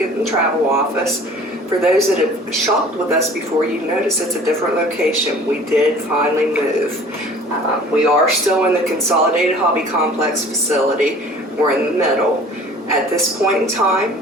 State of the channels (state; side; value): normal; both; correlation 0.48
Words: and Travel Office. For those that have shopped with us before, you notice it's a different location. We did finally move. We are still in the Consolidated Hobby Complex facility. We're in the middle. At this point in